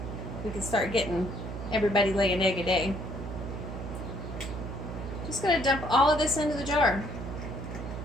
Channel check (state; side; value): noise; right; hum, 7 dB below the sound